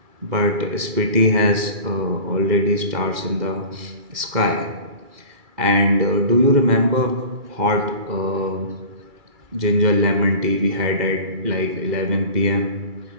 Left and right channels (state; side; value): late; left; 2.3 ms